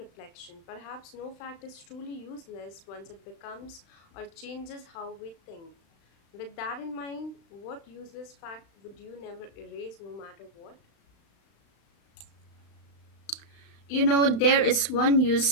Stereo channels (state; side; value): late; right; 36 ms